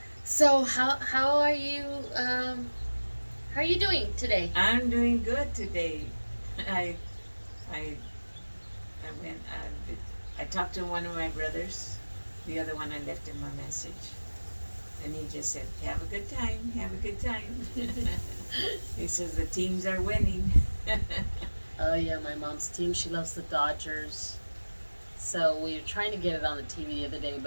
So how are you? How are you doing today? I'm doing good today. I I went. I talked to one of my brothers. The other one I left him a message, and he just said, "Have a good time. Have a good time." He says the teams are winning. Oh yeah, my mom's team. She loves the Dodgers. So we were trying to get it on the TV the other day,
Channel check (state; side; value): inverted; both; correlation -1.00